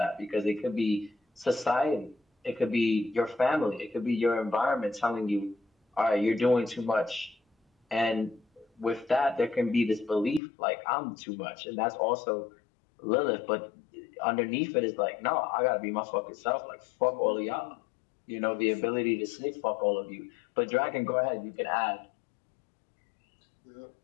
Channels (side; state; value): right; drops out; at 10.4 s